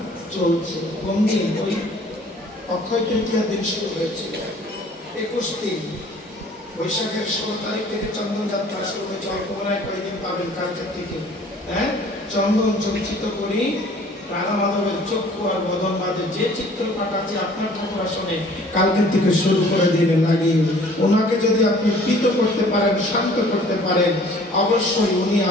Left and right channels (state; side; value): normal; both; correlation 0.53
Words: চলছে। কোন দিন? ওই অক্ষয় তৃতীয়ার দিন শুরু হয়েছিল, 21 দিন, বৈশাখের 16 তারিখ থেকে চন্দন যাত্রা শুরু হয়েছে। অল্প মনে কয়েকদিন পাবেন কালকের থেকে। চন্দন চর্চিত করি রাধা মাধবের চক্ষু আর বদন বাজে যে চিত্রপাট আছে আপনার ঠাকুর আসনে কালকের থেকে শুরু করে দিলে লাগিয়ে, ওনাকে যদি আপনি প্রীত করতে পারেন, শান্ত করতে পারেন, অবশ্যই উনি